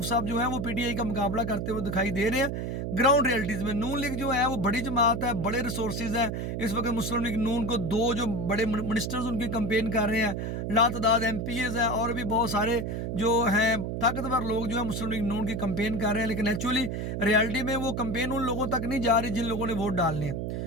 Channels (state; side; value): noise; right; hum, 3 dB below the sound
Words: साहब जो है वो पीटीआई का मुकाबला करते हुए दिखाई दे रहे हैं ग्राउंड रियलिटीज़ में। नून लीग जो है वो बड़ी जमात है, बड़े रिसोर्सेज हैं। इस वक्त मुस्लिम लीग नून को 2 जो बड़े मिनिस्टर्स उनकी कंपेन कर रहे हैं, लातदाद MPs हैं और भी बहुत सारे जो हैं ताकतवर लोग जो है मुस्लिम लीग नून की कंपेन कर रहे हैं, लेकिन एक्चुअली रियलिटी में वो कंपेन उन लोगों तक नहीं जा रही जिन लोगों ने वोट डालने हैं।